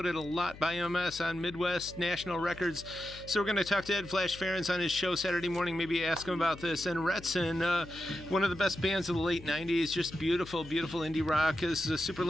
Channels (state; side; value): noise; left; hum, 17 dB below the sound